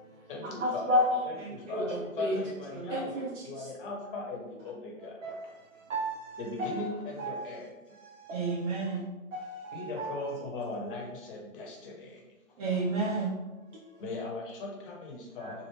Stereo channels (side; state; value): both; normal; correlation 0.01